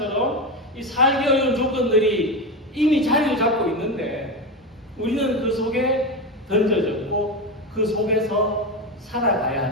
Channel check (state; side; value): normal; both; correlation 0.17